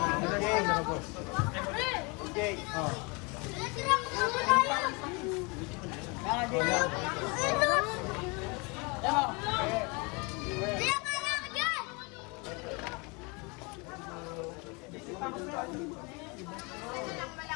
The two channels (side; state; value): right; quieter; 29.4 dB